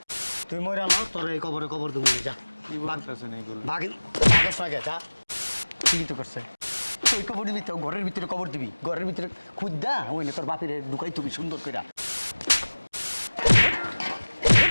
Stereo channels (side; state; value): both; inverted; correlation -1.00